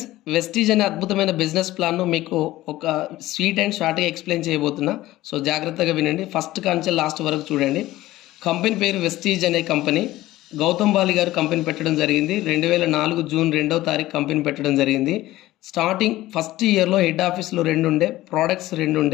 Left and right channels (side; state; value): right; quieter; 16.4 dB